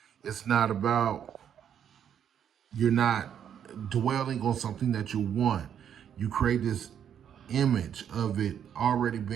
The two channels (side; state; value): left; quieter; 8.9 dB